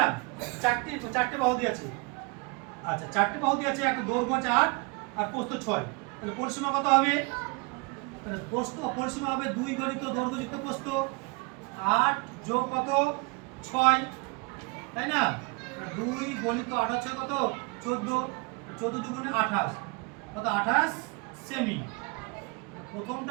চারটে বাহু দিয়েছে। আচ্ছা, চারটি বাহু দিয়ে আছে, একটা দৈর্ঘ্য 4 আর প্রস্থ 6। তাহলে পরিসীমা কত হবে? তাহলে পরিসীমা হবে 2 গণিত দৈর্ঘ্য যুক্ত প্রস্থ 8 যোগ কত 6, তাই না? 2 গণিত 8 হচ্ছে কত 14, 14 দুগুণে 28, কত 28 সেমি।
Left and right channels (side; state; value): left; quieter; 29.5 dB